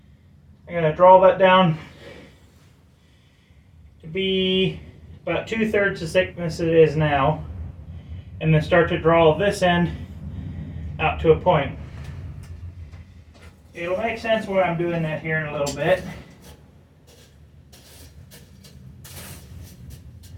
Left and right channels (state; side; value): identical; both; correlation 1.00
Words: I'm going to draw that down to be about 2/3 the thickness it is now, and then start to draw this end out to a point. It'll make sense why I'm doing that here in a little bit.